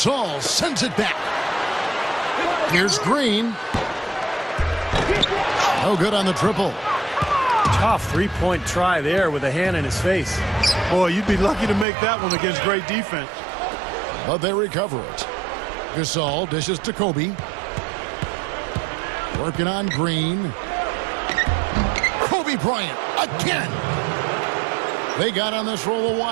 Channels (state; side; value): drops out; left; at 11.9 s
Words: sends it back. Here's Green. No good on the triple. Tough three-point try there with a hand in his face. Boy, you'd be lucky to make that one against great defense. But they recover it. Gasol dishes to Kobe. Working on Green. Kobe Bryant again. They got on this roll a